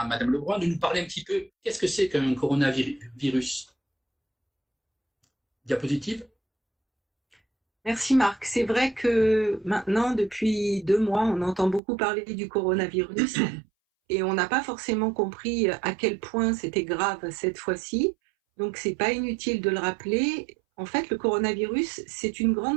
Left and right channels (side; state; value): left; drops out; at 11.8 s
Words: Madame Lebrun de nous parler un petit peu qu'est-ce que c'est qu'un coronavirus. Diapositive. Merci Marc. C'est vrai que maintenant, depuis 2 mois, on entend beaucoup parler du coronavirus et on n'a pas forcément compris à quel point c'était grave cette fois-ci. Donc, c'est pas inutile de le rappeler. En fait, le coronavirus, c'est une